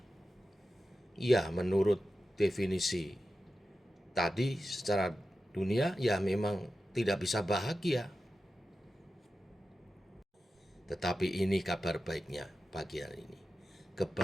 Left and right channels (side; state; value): both; normal; correlation 0.92